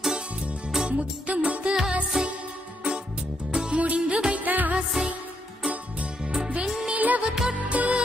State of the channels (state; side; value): normal; both; correlation 0.77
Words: முத்து முத்து ஆசை முடிந்து வைத்த ஆசை வெண்ணிலவு தொட்டு